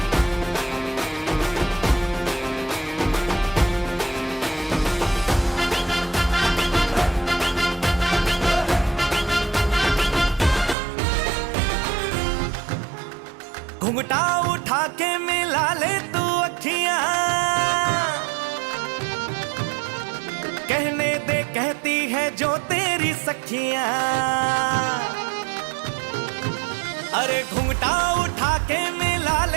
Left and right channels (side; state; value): left; drops out; at 10.8 s